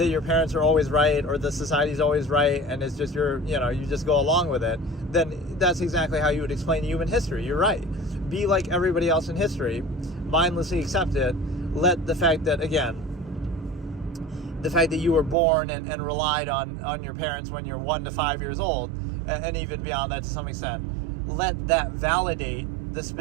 your parents are always right or the society's always right and it's just you just go along with it, then that's exactly how you would explain human history. You're right. Be like everybody else in history, mindlessly accept it. Let the fact that, again, the fact that you were born and relied on your parents when you're 1 to 5 years old, and even beyond that to some extent, let that validate the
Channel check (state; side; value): drops out; left; at 15.4 s